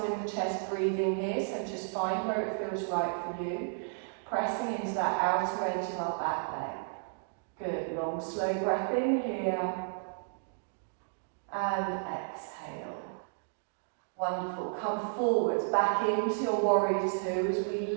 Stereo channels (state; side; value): silent; left; digital silence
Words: in the chest breathing here, so just find where it feels right for you. Pressing into that outer edge of our back leg. Good, long slow breath in here. And exhale. Wonderful. Come forwards, back into your warrior two as we